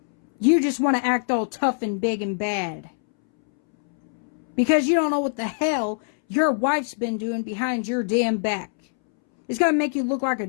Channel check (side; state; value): right; silent; 63 dB below the other